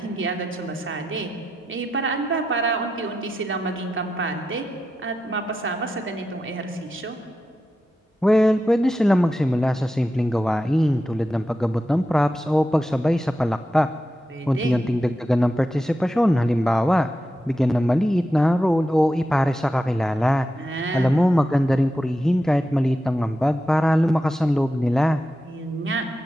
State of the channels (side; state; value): both; normal; correlation 0.89